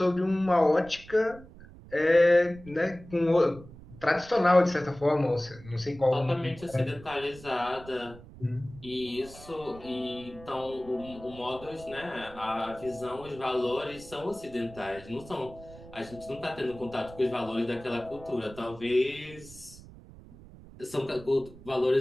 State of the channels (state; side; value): noise; right; rumble, 19 dB below the sound